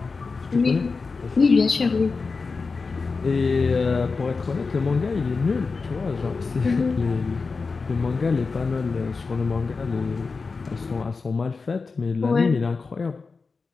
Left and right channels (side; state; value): right; quieter; 4.4 dB